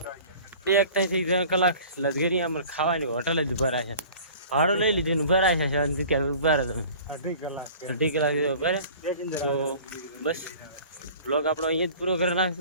2 થી 3 કલાક લશ્કરી આમ ખાવાની હોટલ જ ઉભા રહ્યા છે. ભાડું લઈ લીધું ઉભા રહ્યા છે શાંતિ ક્યાં ઉભા રહે તમે 2.5 કલાક ઉભા રહે. તો બસ બ્લોગ આપણો અહીંયા જ પૂરો કરી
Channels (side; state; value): both; inverted; correlation -0.45